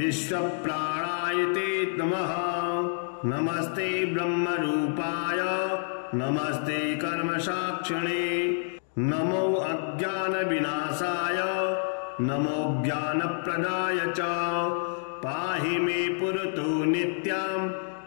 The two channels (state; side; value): silent; right; digital silence